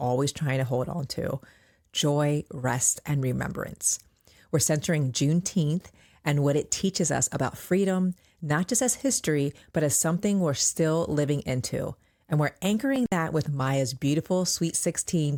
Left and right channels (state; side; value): identical; both; correlation 1.00